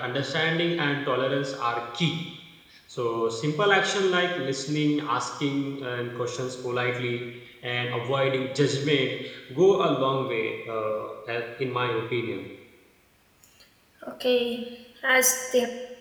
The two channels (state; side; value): identical; both; correlation 1.00